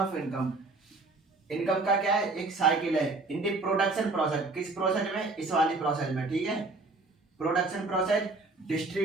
income. Income का क्या है, एक साइकिल है इन दी प्रोडक्शन प्रोसेस। किस प्रोसेस में, इस वाली प्रोसेस में, ठीक है। Production process,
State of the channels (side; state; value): left; quieter; 3.4 dB